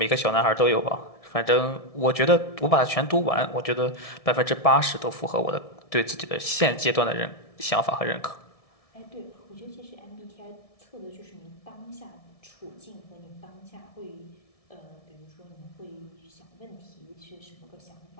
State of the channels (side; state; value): right; late; 1.7 ms